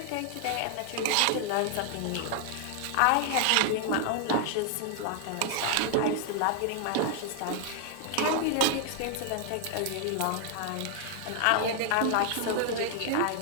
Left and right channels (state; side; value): different; both; correlation 0.00